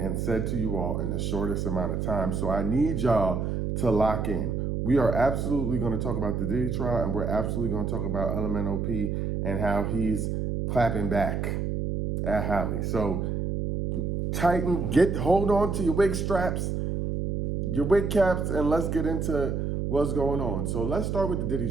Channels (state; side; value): noise; right; hum, 1 dB below the sound